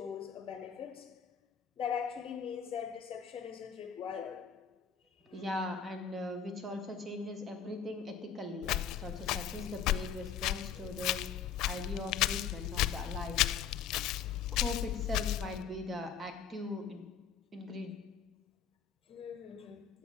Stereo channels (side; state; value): right; quieter; 7.6 dB